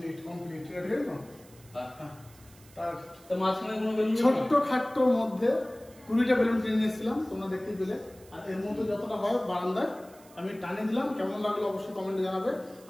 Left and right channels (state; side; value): noise; right; hiss, 25 dB below the sound